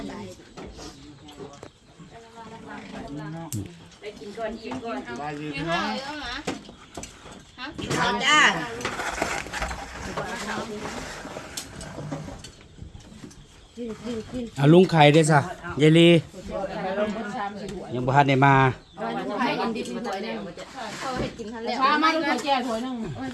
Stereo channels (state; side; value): identical; both; correlation 1.00